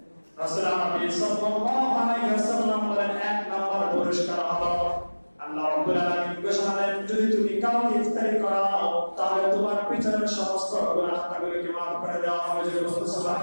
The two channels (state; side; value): inverted; both; correlation -1.00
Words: রাসূল সাল্লাল্লাহু আলাইহি ওয়াসাল্লাম বলেন, এক নাম্বার পুরস্কার হলো আল্লাহ রাব্বুল আলামিন ঘোষণা দেন, যদি তুমি কাউকে ইফতারি করাও তাহলে তোমার পিছনের সমস্ত গুনাহগুলোকে মাফ করে দেওয়া হবে।